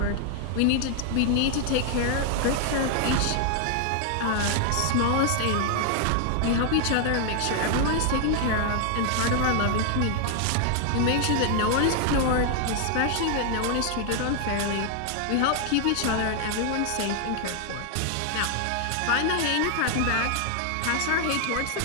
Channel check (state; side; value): different; both; correlation 0.00